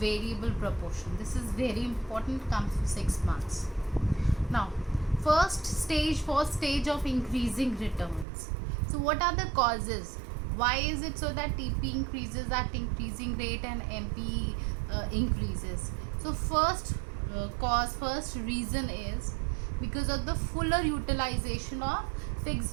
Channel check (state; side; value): drops out; left; at 8.2 s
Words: proportion. This is very important, comes to 6 marks. Now, first stage of increasing returns. So what are the causes? Why is it so that TP increases at increasing rate and MP increases? So first reason is because of the fuller utilization of